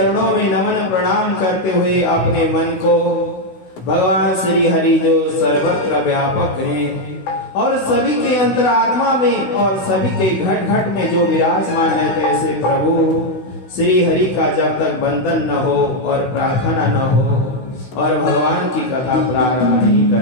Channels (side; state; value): right; late; 16 ms